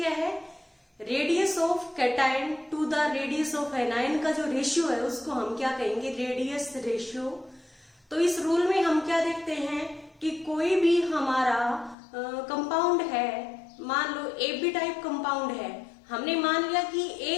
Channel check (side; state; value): right; drops out; at 12.0 s